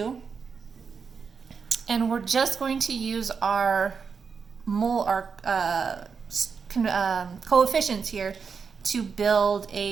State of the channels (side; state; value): left; quieter; 5.8 dB